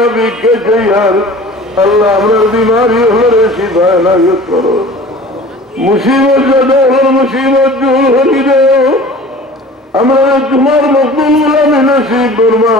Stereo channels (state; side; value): normal; both; correlation 0.42